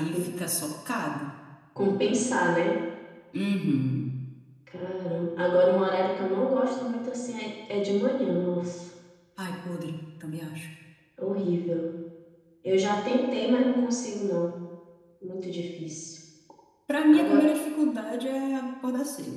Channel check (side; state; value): both; identical; correlation 1.00